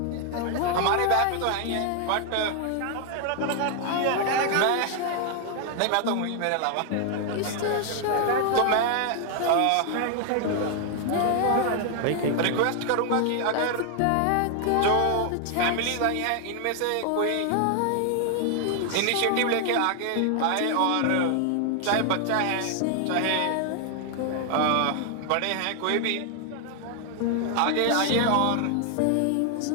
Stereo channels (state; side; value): different; both; correlation 0.00